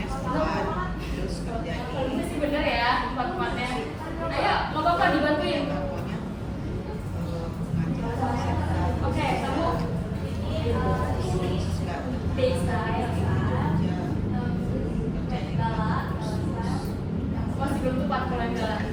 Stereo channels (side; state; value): both; identical; correlation 1.00